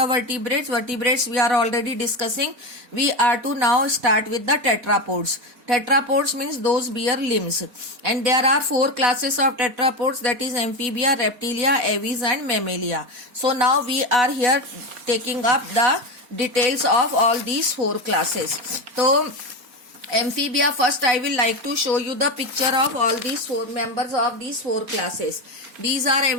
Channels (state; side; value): late; left; 4.3 ms